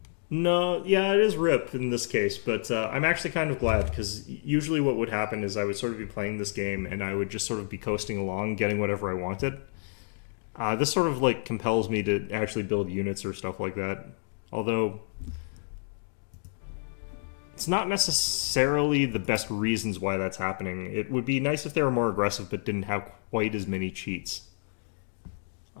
No, yeah, it is RIP in this case, but I'm actually kind of glad, because usually what would happen is I would sort of be playing this game, and I would just sort of be coasting along, getting whatever I wanted. This sort of, like, compels me to actually build units or stuff like that. Although it's not necessarily the best reasons why that's happening. It would be nice if they were more aggressive but didn't have quite as many cheats.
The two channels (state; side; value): silent; right; digital silence